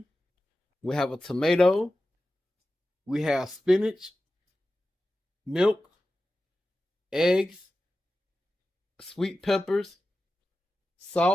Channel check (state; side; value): normal; both; correlation 0.93